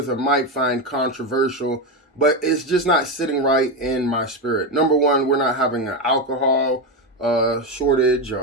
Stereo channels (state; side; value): normal; both; correlation 0.12